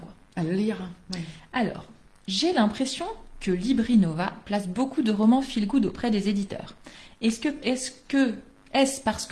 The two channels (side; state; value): both; identical; correlation 1.00